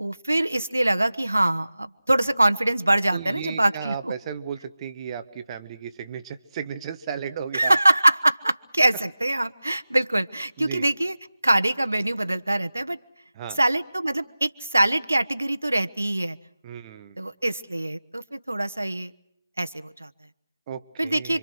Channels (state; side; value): inverted; both; correlation -0.95